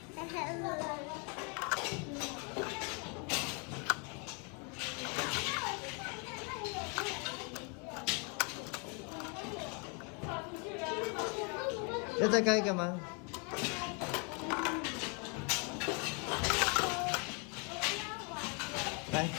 要再盖一个吗？来，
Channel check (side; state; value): right; quieter; 35.1 dB